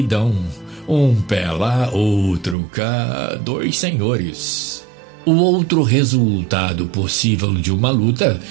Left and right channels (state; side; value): drops out; left; at 2.6 s